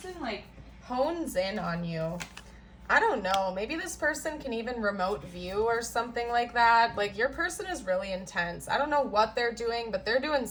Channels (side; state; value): both; identical; correlation 1.00